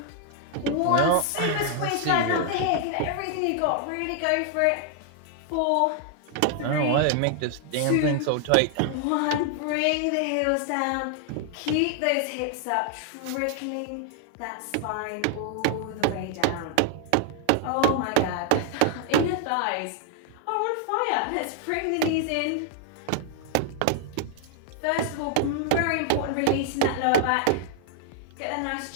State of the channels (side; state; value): both; different; correlation 0.00